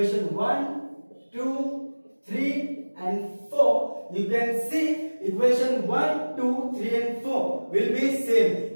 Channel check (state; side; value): inverted; both; correlation -1.00